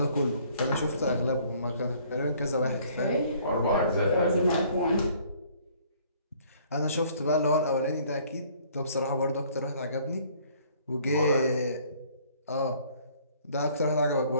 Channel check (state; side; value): inverted; both; correlation -0.59